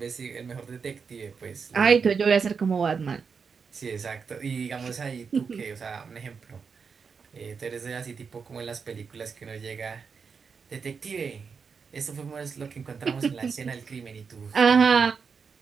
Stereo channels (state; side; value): quieter; left; 5.7 dB